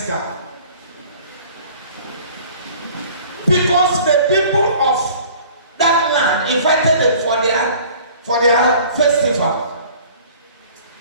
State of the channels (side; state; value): both; inverted; correlation -0.49